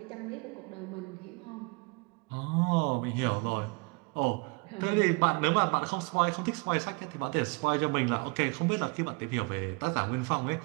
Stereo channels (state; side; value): quieter; left; 30.4 dB